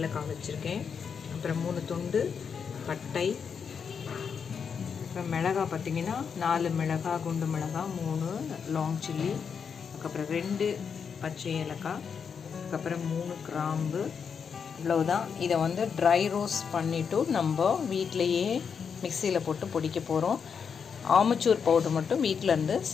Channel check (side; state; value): right; quieter; 6.5 dB